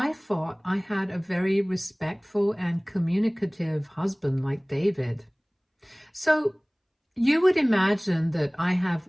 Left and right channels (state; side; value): identical; both; correlation 1.00